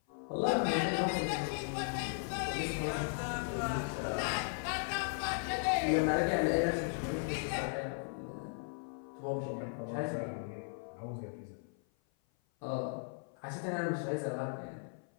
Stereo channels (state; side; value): silent; right; 53 dB below the other